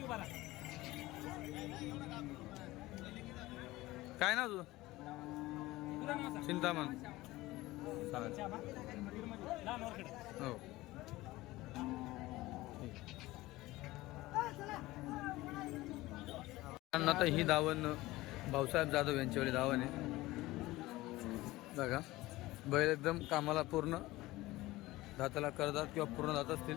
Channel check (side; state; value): right; quieter; 18.6 dB